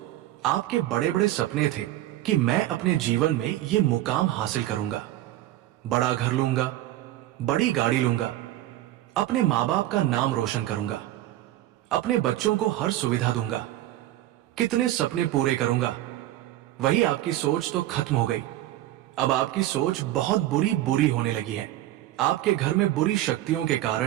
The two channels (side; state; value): left; quieter; 14.7 dB